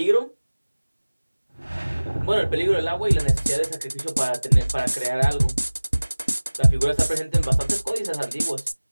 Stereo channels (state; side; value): inverted; both; correlation -1.00